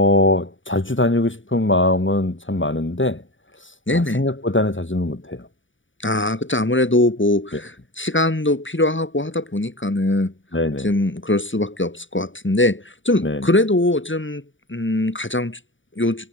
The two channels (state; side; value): late; right; 0.56 ms